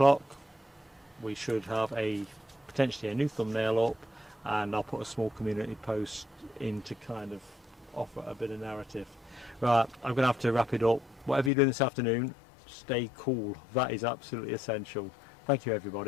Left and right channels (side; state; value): right; drops out; at 11.5 s